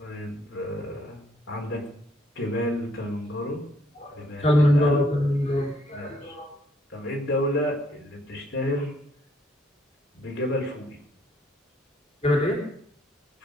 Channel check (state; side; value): normal; both; correlation 0.69